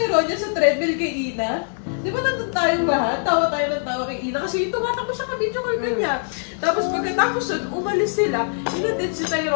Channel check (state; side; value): silent; right; 64 dB below the other